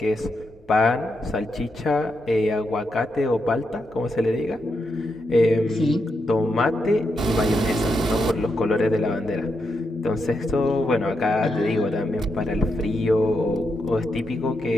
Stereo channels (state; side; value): normal; both; correlation 0.83